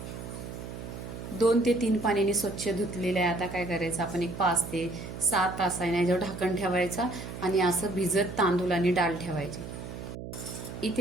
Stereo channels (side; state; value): right; noise; hum, 9 dB below the sound